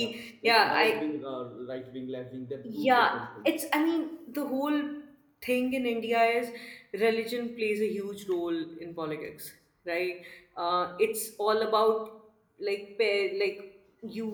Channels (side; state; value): both; identical; correlation 1.00